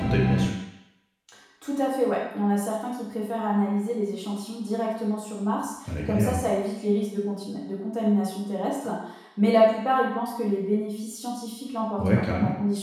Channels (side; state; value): both; identical; correlation 1.00